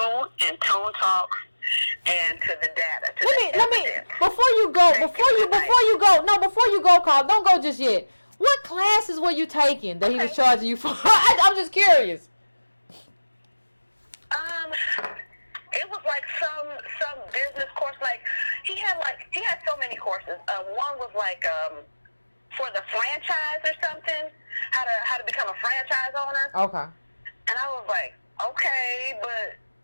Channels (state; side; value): inverted; both; correlation -1.00